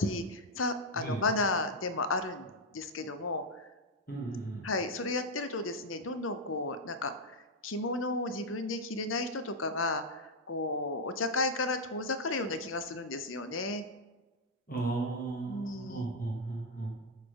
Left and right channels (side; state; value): both; normal; correlation 0.00